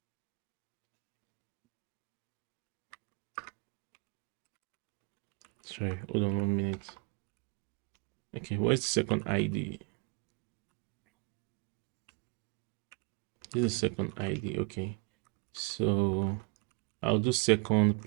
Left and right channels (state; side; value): quieter; left; 30.5 dB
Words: Sorry, hold on 1 minute. Okay, what's the second ID? This is second ID. Okay, so I'll do second